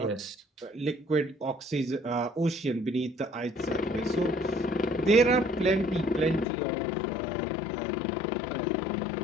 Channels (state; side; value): drops out; right; at 6.5 s